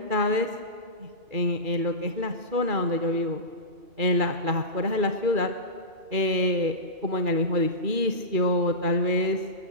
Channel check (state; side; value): late; left; 2.4 ms